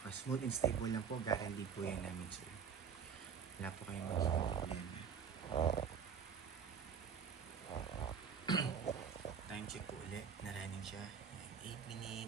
smooth and stable lang po, guarantee po yan namin sir. Wala po kayong magiging problema. Time check po ulit, na-running siya. 8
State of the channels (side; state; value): left; quieter; 6.9 dB